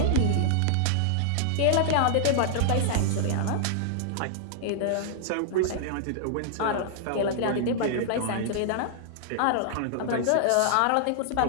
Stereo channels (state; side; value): different; both; correlation -0.01